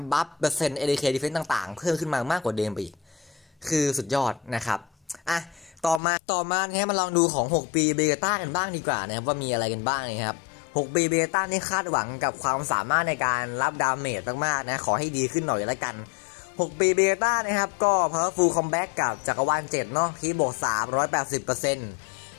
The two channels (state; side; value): drops out; right; at 6.0 s